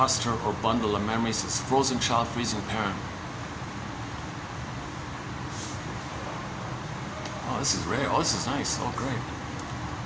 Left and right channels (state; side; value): identical; both; correlation 1.00